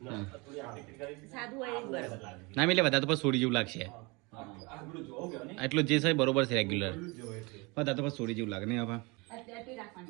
ના મિલે બધા તો પછી છોડી જેવું લાગશે એટલું જે છે બરોબર છે રેગ્યુલર બધા તો પછી છોડી જેવું લાગે નહીં હવે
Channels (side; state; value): left; quieter; 27.1 dB